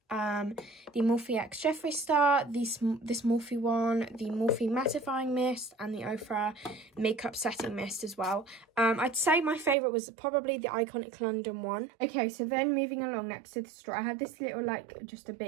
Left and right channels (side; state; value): left; drops out; at 9.8 s